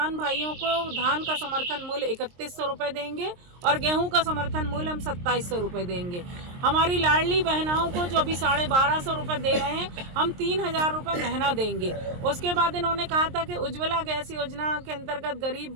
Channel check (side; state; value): left; late; 23 ms